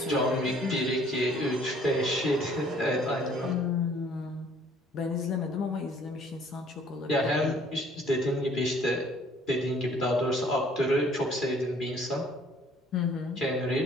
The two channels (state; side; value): normal; both; correlation 0.58